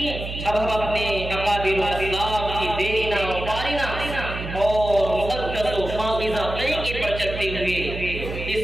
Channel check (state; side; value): noise; right; hum, 7 dB below the sound